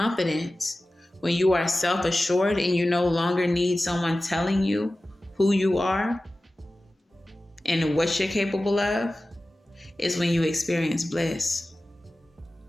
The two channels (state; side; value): normal; both; correlation 0.96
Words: when you are self-assured and you no longer need someone telling you who you are and what you're capable of, is when you experience bliss.